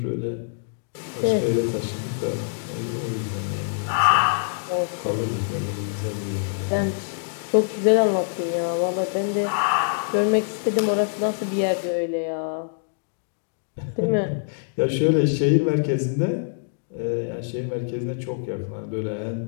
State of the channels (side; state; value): right; silent; digital silence